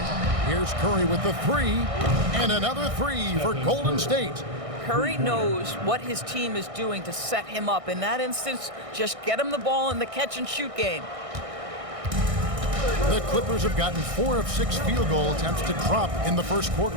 Here's Curry with the three, and another three for Golden State. Curry knows what his team is doing to set him up. In that instance, just get him the ball in the catch-and-shoot game. The Clippers have gotten 4 of 6 field goal attempts to drop in the first quarter.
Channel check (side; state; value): left; late; 1.6 ms